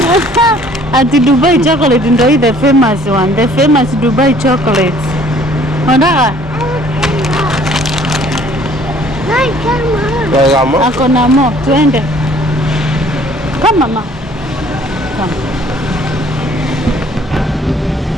Ati Dubai chocolate ndio hii the famous one. The famous Dubai chocolate. Nataka ako na mo, tuende. Come mama. Come.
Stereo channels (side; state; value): both; normal; correlation 0.57